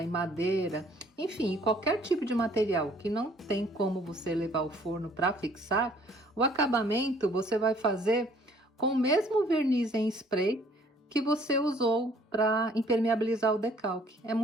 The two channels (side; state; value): both; normal; correlation 0.59